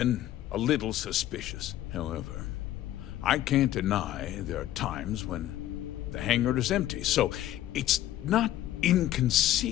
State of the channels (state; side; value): quieter; right; 13.3 dB